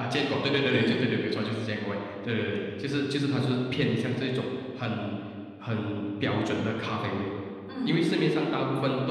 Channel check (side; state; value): both; identical; correlation 1.00